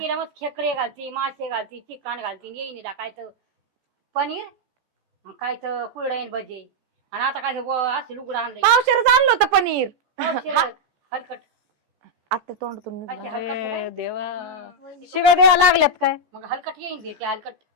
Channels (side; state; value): left; late; 14 ms